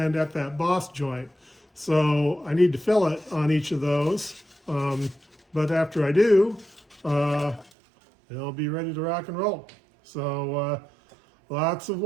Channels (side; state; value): left; drops out; at 7.7 s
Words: at that boss joint. So I need to fillet on each of those, but after I do, it'll be ready to rock and roll. So lots of